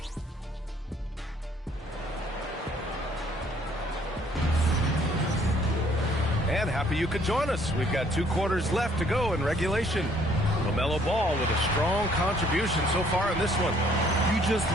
And happy you could join us. We've got 2 quarters left to go in regulation. LaMelo Ball with a strong contribution so far in this one. You just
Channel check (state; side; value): normal; both; correlation 0.62